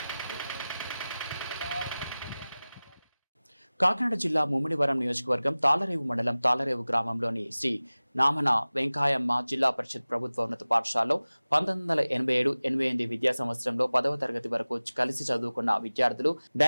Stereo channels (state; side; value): inverted; both; correlation -0.98